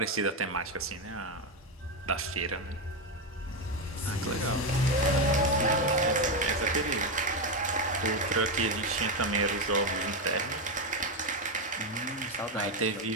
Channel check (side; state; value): both; normal; correlation 0.09